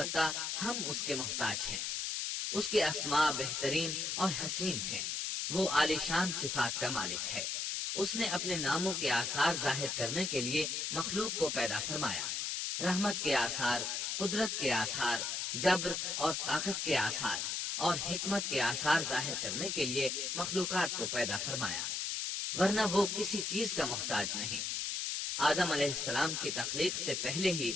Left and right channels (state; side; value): noise; left; hiss, 1 dB below the sound